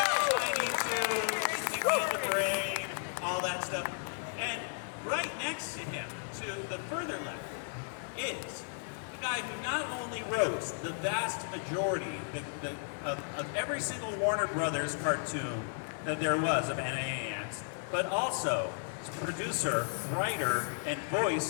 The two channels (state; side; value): silent; right; digital silence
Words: Tiny Toons, King of the Brain, all that stuff. And right next to him, to the further left, is the guy who not only wrote the vast majority of every single Warner Brothers cartoon that there was of Animaniacs, but also producer, writer, and